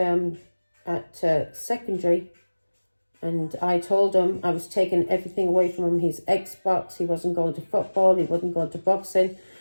secondary, and I told him I was taking everything away from him, his Xbox, he wasn't going to football, he wasn't going to boxing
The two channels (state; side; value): inverted; both; correlation -1.00